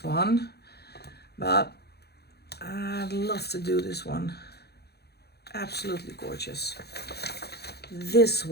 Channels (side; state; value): right; late; 0.47 ms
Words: one. But I'd love to do this one. Absolutely gorgeous. This